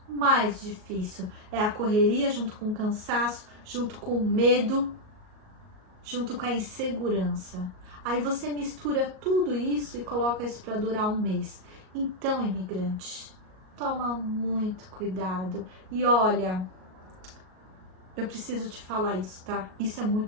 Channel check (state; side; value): late; left; 38 ms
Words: mais difícil, é a correria junto com o cansaço, junto com o medo, junto com a insegurança. Aí você mistura tudo isso e coloca isso para durar um mês. Então, imigrante, toma muito cuidado. E olha, eu preciso te falar isso, tá? Isso é